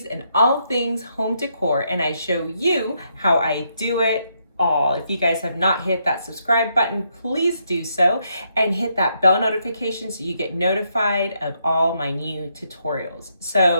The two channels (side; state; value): both; inverted; correlation -0.77